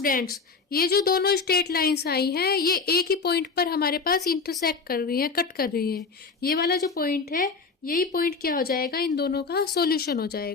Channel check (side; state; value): right; quieter; 4.8 dB